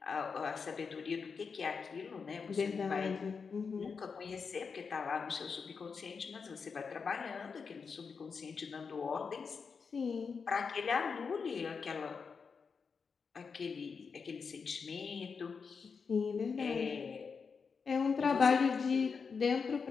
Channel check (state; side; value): quieter; right; 5.5 dB